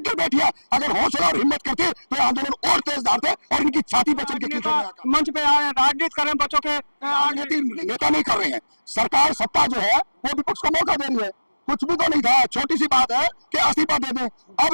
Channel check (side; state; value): both; inverted; correlation -1.00